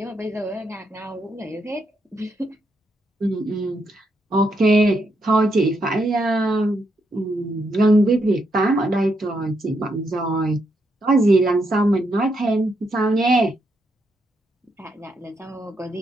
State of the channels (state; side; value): normal; both; correlation 0.79